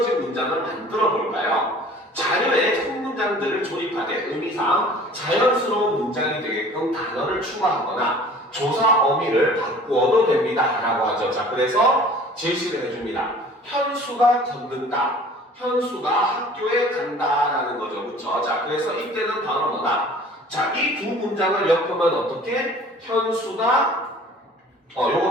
문장을 만들어 볼까요? 자료에 첫 문장들을 조립하되 의미상 자연스러운 문장이 되게끔 단어를 추가하거나 조사 어미를 바꾸어도 됩니다. 라고 하죠. 자, 그래서 제시를 해줍니다. 현수가 걷는다. 현수가 학교에 간다라는 거죠. 그쵸? 자, 그래서 이때는 바로 뭐다? 자, 이 두 문장을 엮으면 어떻게? 현수가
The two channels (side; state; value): both; normal; correlation 0.48